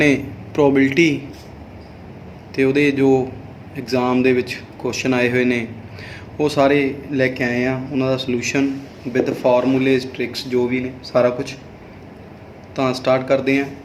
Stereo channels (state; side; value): identical; both; correlation 1.00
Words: प्रोबेबिलिटी तो वो जो एग्जाम के क्वेश्चन आए हुए ने वो सारे लैके आए हैं। उन्होंने सलूशन विद फार्मूलेज ट्रिक्स जो भी ने सारा कुछ तो स्टार्ट करते हैं।